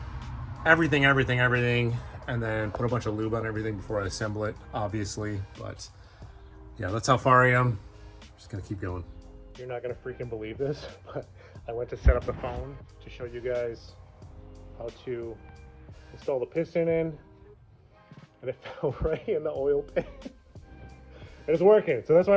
everything, and then put a bunch of lube on everything before I assemble it, obviously. But yeah, that's how far I am. Just gonna keep going. You're not gonna freaking believe this, but I went to set up the phone to show you guys how to install the piston in, and it fell right in the oil pan. And it's working, so that's why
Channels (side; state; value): both; identical; correlation 1.00